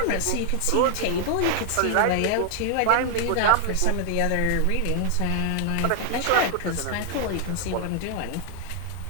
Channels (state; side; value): different; both; correlation 0.00